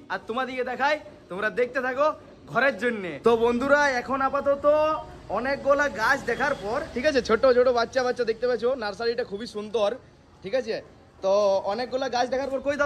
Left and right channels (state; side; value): identical; both; correlation 1.00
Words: আর তোমাদিকে দেখাই, তোমরা দেখতে থাকো ঘরের জন্য। তো বন্ধুরা এখন আপাতত অনেকগুলা গাছ দেখার পর, ঠিক আছে, ছোট ছোট বাচ্চা দেখতে পাচ্ছ, নার্সারিটা খুবই সুন্দর, ঠিক আছে। তো অনেকগুলা গাছ দেখার পর, কই